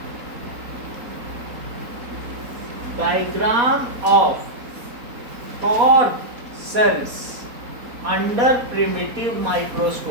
diagram of cork sales under primitive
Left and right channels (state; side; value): late; left; 4.2 ms